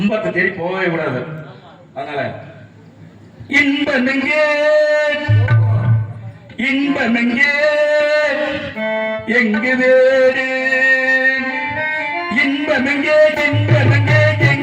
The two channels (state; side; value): identical; both; correlation 1.00